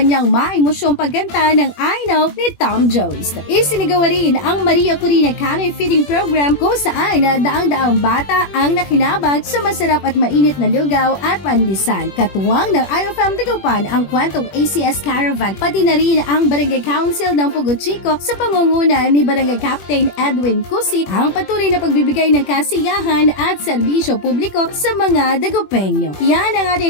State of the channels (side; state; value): right; late; 21 ms